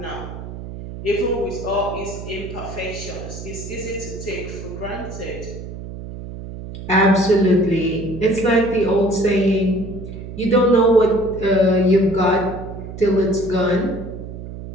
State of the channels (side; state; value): right; noise; hum, 10 dB below the sound